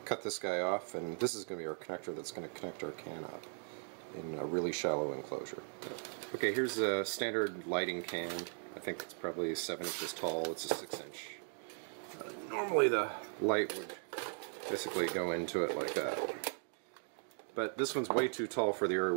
cut this guy off, and this is going to be our connector that's going to connect our can up in a really shallow enclosure. Okay, here's a standard lighting can. I think it's probably 7 inches tall. It's a 6-inch. Normally the light would basically go into it like that. But this one's way too tall for the area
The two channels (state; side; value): silent; left; 52 dB below the other